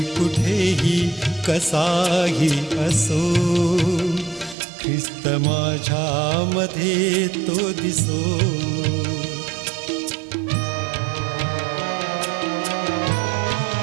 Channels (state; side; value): drops out; left; at 4.5 s